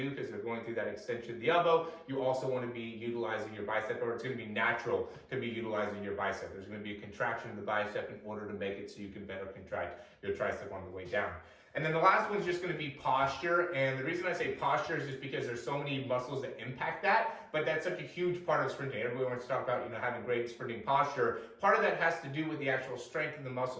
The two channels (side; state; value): both; identical; correlation 1.00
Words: because they're going through that extension of the elbow, you also want to be utilizing your bicep, or it's going to be natural to be utilizing your bicep. There's going to be a contraction of the bicep in order to make it so you can better contract your tricep on the way down. And then the last one's just going to be posture. And the reason I say posture is just because there's so many muscles that impact that, but that's such a huge part of sprinting. Everybody wants to talk about, having great sprinting posture. Part of that has to do with the actual strength of the